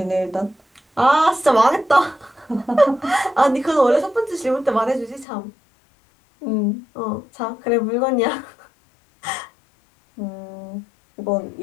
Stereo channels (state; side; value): drops out; right; at 5.2 s